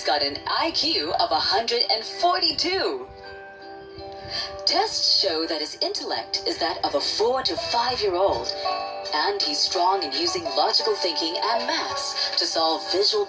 got an IQ of 142. Tests show that his intellect is that of a 4 to 5-year-old, and he's strong in using logical thinking and maths to solve visual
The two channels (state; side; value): identical; both; correlation 1.00